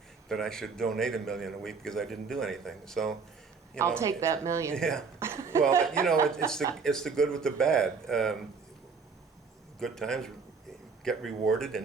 that I should donate $1 million a week because I didn't do anything. So, I'll take that $1 million. Yeah. Well, you know, it's the good with the bad. Good times get rewarded,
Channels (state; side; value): quieter; left; 5.2 dB